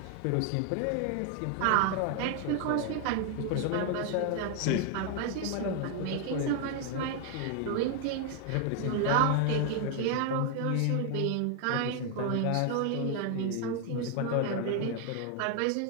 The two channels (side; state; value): both; different; correlation 0.01